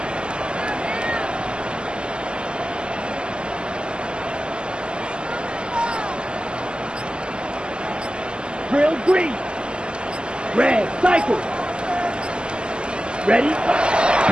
Drill, green. Red, cycle. Ready?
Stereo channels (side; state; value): left; late; 0.049 ms